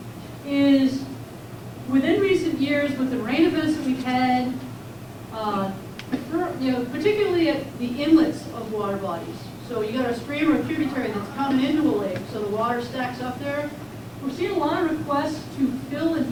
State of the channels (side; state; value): both; identical; correlation 1.00